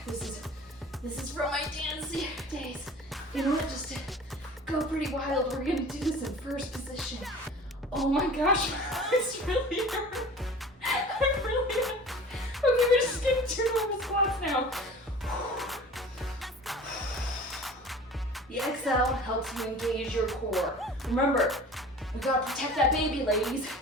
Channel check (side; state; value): both; normal; correlation 0.41